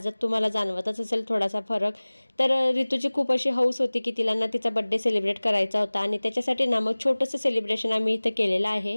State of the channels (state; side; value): inverted; both; correlation -1.00